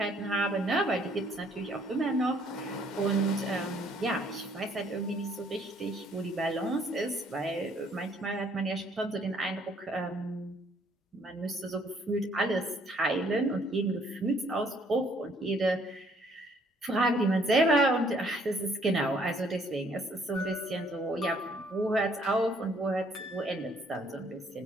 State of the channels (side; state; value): both; normal; correlation 0.64